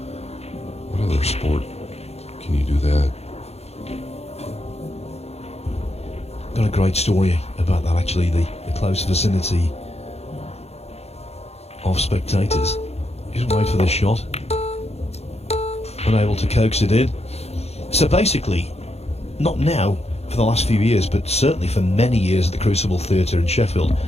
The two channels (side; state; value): right; late; 0.30 ms